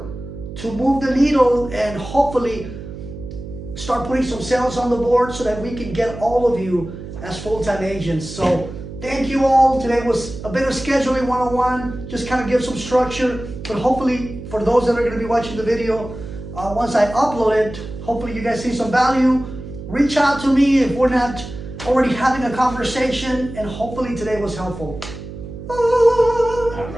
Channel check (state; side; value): noise; right; hum, 11 dB below the sound